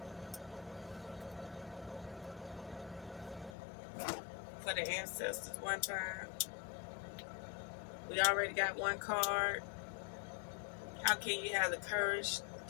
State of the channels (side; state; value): right; drops out; at 3.6 s